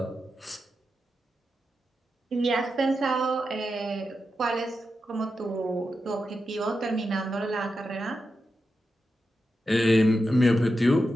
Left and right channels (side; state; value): both; normal; correlation 0.89